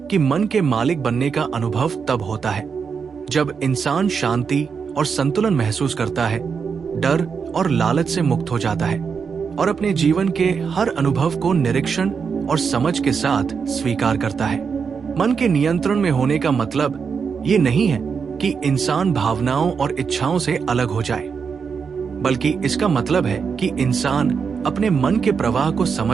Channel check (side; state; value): left; quieter; 6.0 dB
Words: कि मन के मालिक बनने का अनुभव तब होता है जब इंसान शांति और संतुलन महसूस करता है, डर और लालच से मुक्त हो जाता है और अपने जीवन के हर अनुभव को निरीक्षण और समझ के साथ स्वीकार करता है। मन के नियंत्रण में होने का मतलब ये नहीं है कि इंसान भावनाओं और इच्छाओं से अलग हो जाए, बल्कि इसका मतलब है कि इंसान अपने मन के प्रवाह को